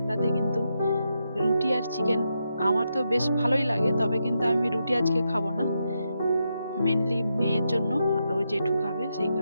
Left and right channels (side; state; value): both; inverted; correlation -0.84